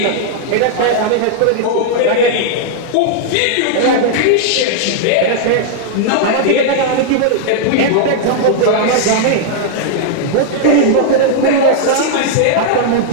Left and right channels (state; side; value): different; both; correlation -0.01